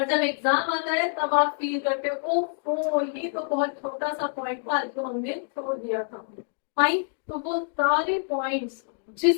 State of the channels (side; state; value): right; silent; digital silence